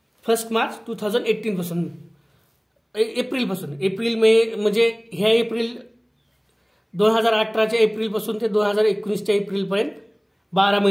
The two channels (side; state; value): both; identical; correlation 1.00